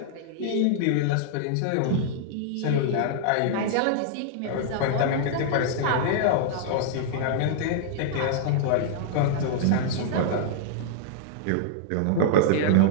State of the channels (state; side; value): different; both; correlation -0.01